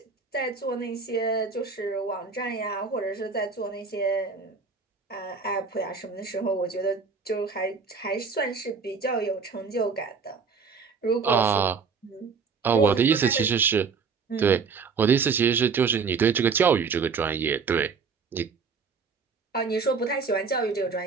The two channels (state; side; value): quieter; left; 5.2 dB